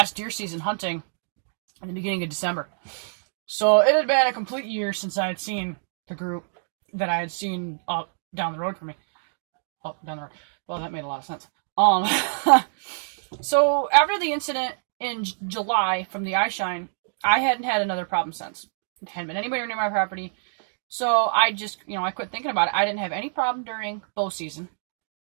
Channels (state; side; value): silent; left; digital silence